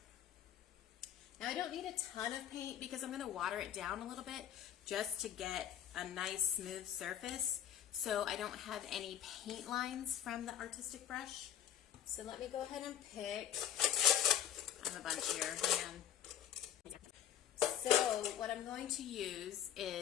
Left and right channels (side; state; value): right; quieter; 10.2 dB